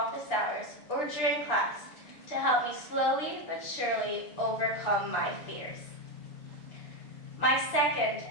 hours or during class to help me slowly but surely overcome my fears. My second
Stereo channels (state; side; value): late; right; 6.7 ms